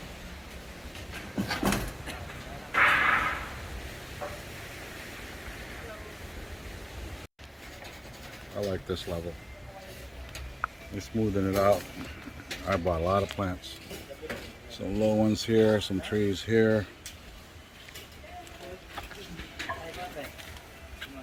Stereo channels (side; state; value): both; identical; correlation 1.00